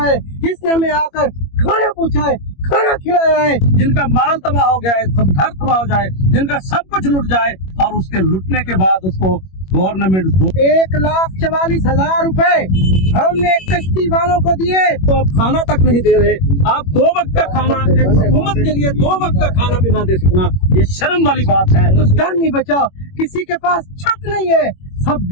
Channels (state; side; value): late; right; 21 ms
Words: जिसने हमें आकर खाना पूछा है, खाना खिलाया है। जिनका माल तबाह हो गया है, सब घर तबाह हो जाए, जिनका सब कुछ लुट जाए और उसके लुटने के बाद उसको गवर्नमेंट 1,44,000 रुपए हमने कश्ती वालों को दिए। तो आप खाना तक नहीं दे रहे। आप 2 वक्त का खाना एक हुकूमत के लिए 2 वक्त का खाना भी ना दे सकना, ये शर्म वाली बात है। तो घर नहीं बचा, किसी के पास छत नहीं है,